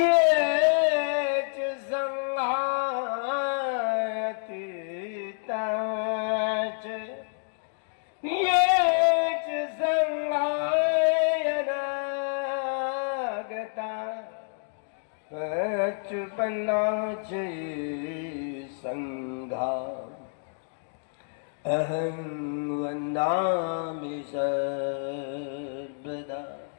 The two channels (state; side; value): silent; right; digital silence